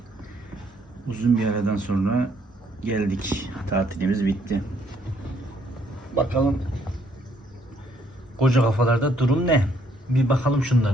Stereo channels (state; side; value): normal; both; correlation 0.67